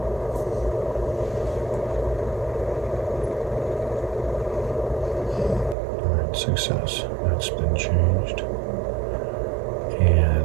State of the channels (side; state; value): left; drops out; at 5.8 s